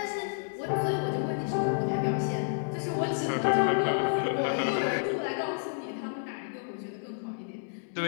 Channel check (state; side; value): silent; right; digital silence